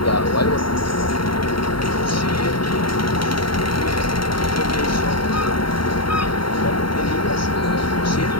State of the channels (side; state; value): right; late; 0.73 ms